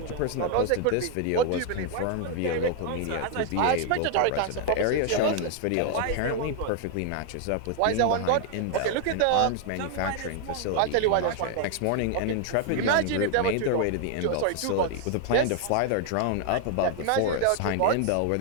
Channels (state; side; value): different; both; correlation 0.00